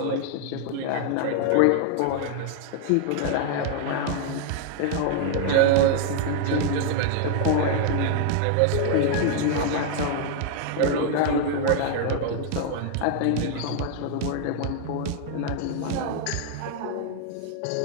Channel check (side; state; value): both; different; correlation 0.00